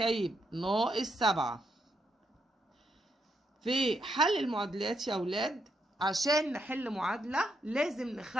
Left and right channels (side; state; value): both; normal; correlation 0.79